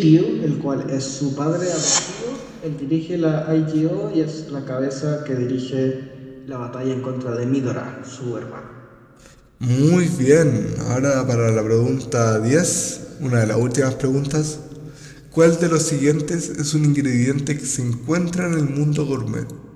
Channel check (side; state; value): both; identical; correlation 1.00